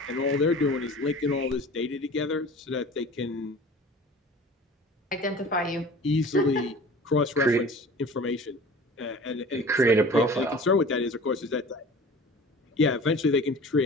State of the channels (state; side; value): normal; both; correlation 0.42